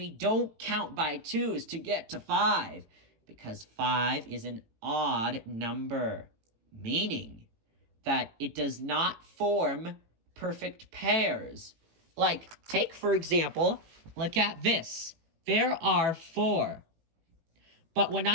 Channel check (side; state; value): left; late; 18 ms